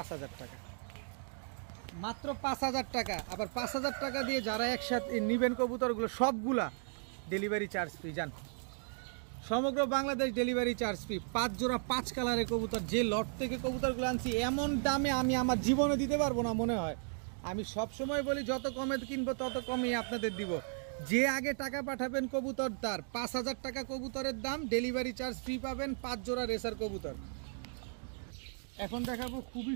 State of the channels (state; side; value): silent; left; 54 dB below the other